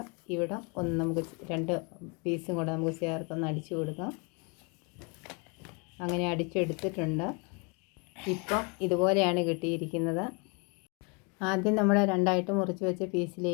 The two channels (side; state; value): right; quieter; 33.0 dB